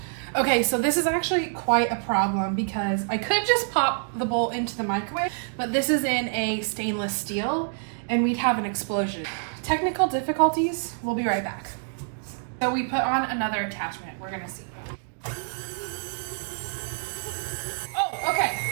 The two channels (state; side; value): silent; left; digital silence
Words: Okay, so this is actually quite a problem because I could just pop the bowl into the microwave, but this is in a stainless steel and we'd have an explosion. Technical difficulties, we'll be right back. So we put on another attachment, we're gonna see. Oh, okay.